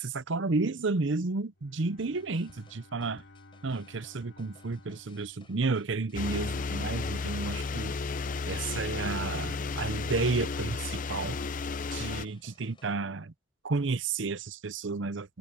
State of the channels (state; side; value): normal; both; correlation 0.41